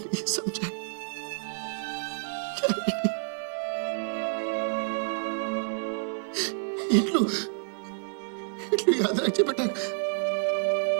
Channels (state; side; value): silent; left; digital silence